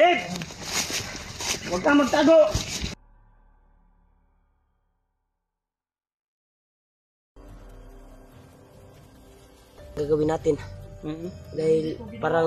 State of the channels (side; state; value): both; identical; correlation 1.00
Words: Huwag kang magtago! gagawin natin. Dahil